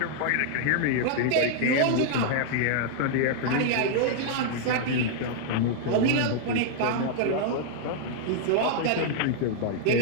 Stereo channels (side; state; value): both; different; correlation -0.01